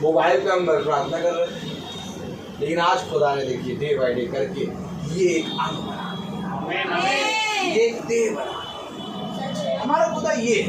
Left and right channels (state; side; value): identical; both; correlation 1.00